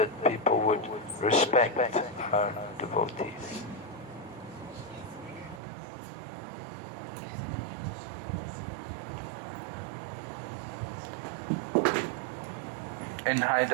people would respect our devotees. In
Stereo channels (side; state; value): left; drops out; at 5.6 s